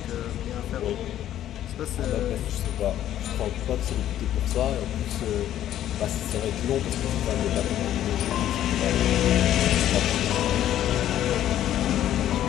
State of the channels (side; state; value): right; quieter; 11.9 dB